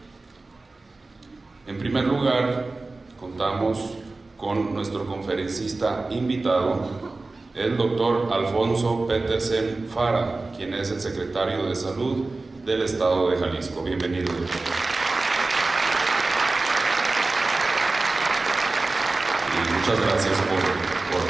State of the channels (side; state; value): left; quieter; 3.4 dB